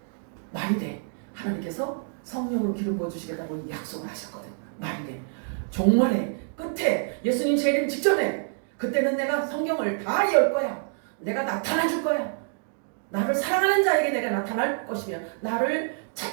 말이 돼. 하나님께서 성령으로 기름 부어주시겠다고 약속을 하셨거든. 말이 돼. 종말의 끝에 예수님 재림 직전에 그때는 내가 성경을 다 열 거야. 내가 나타나 줄 거야. 나를 사랑하는 자에게 내가 나타날 것이며 나를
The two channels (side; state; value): left; silent; 60 dB below the other